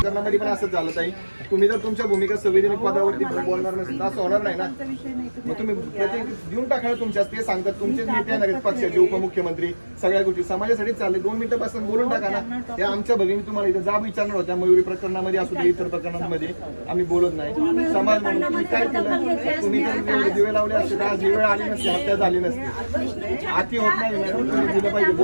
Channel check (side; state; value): both; inverted; correlation -1.00